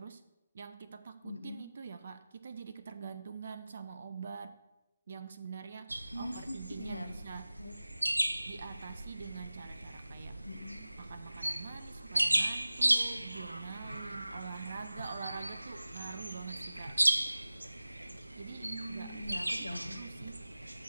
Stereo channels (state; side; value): inverted; both; correlation -0.96